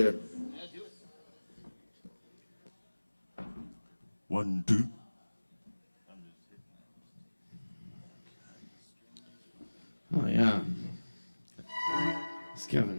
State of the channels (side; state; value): both; inverted; correlation -1.00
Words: 1, 2. Oh, yeah. It's